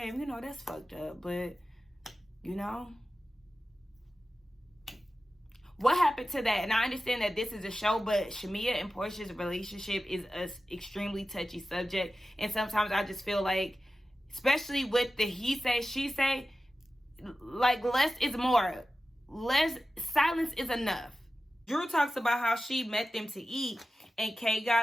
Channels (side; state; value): both; normal; correlation 0.94